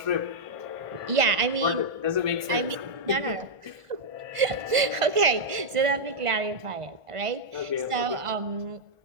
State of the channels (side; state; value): left; late; 1.5 ms